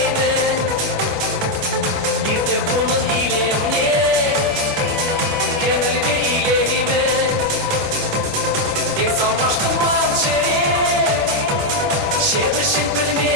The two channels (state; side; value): late; right; 10 ms